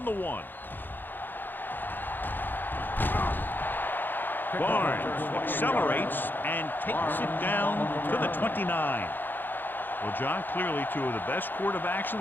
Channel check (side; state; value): right; late; 0.092 ms